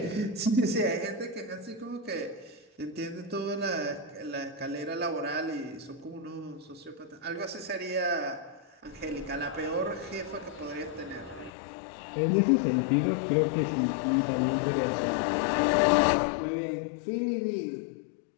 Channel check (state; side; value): drops out; right; at 11.5 s